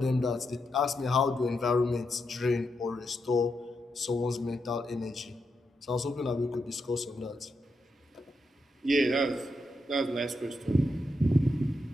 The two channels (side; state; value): both; normal; correlation 0.84